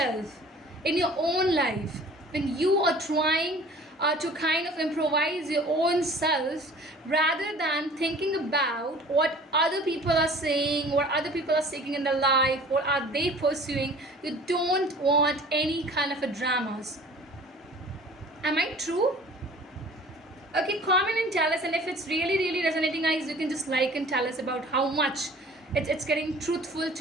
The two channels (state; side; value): normal; both; correlation 0.47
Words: in your own life. When you are trying to kind of improvise your own self, rather than thinking about what other people are saying, what other people are seeking in their life, what are they pursuing. You don't want any kind of a dramas. Am I true? Okay, comment and tell us, and if it's really, really resonating, guys, you can just like and tell us about how much it's getting truthful